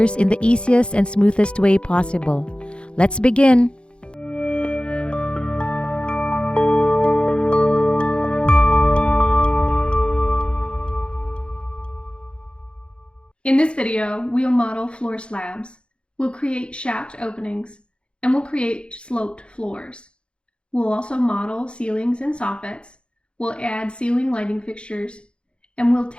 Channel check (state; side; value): late; right; 0.056 ms